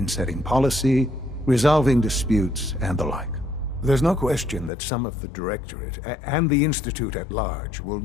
setting policy, resolving disputes, and the like. There's no question that some of the Directorate and the Institute at large will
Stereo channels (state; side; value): drops out; right; at 4.7 s